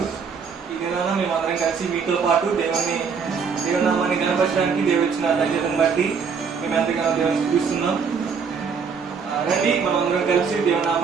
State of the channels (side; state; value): left; quieter; 5.9 dB